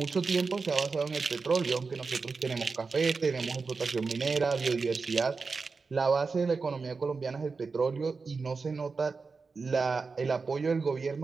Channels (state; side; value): quieter; left; 4.5 dB